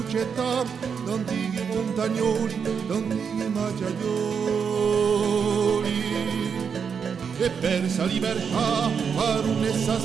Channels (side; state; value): left; quieter; 6.6 dB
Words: antichi montagnoli, antichi macciaioli. E persa libertà, per un'essa